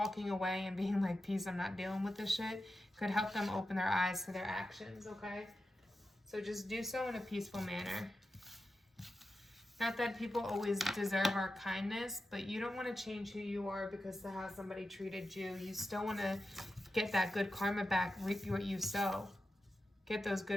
away and being like, peace, I'm not dealing with this shit, could help them open their eyes to their actions, okay? So just do so in a peaceful manner. Not that people always deserve our kindness, but you don't want to change who you are because of how somebody treated you. You still want to get that good karma back, reap what you sow. Get those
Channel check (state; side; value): normal; both; correlation 0.91